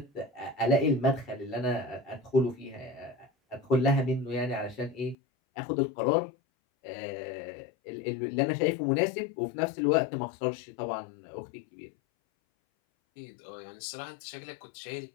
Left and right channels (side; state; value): right; drops out; at 5.2 s